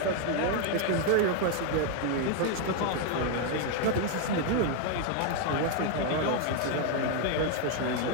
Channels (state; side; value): different; both; correlation 0.01